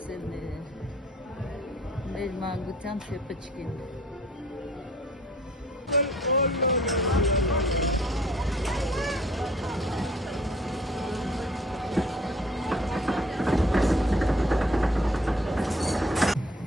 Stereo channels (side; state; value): both; normal; correlation 0.56